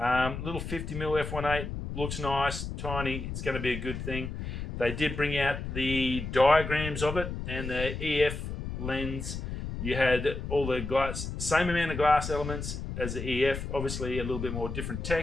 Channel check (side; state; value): left; noise; rumble, 6 dB below the sound